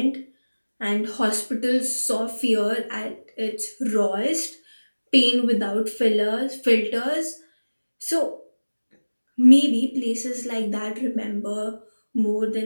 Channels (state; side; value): inverted; both; correlation -1.00